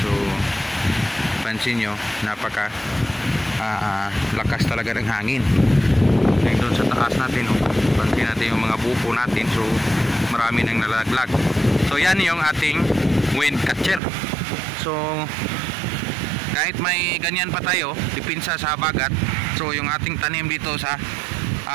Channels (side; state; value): left; drops out; at 14.0 s